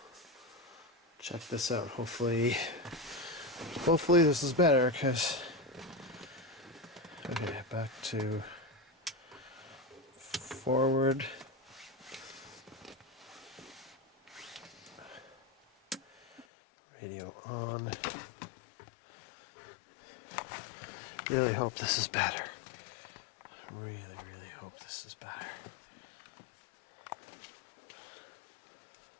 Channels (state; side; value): drops out; right; at 16.4 s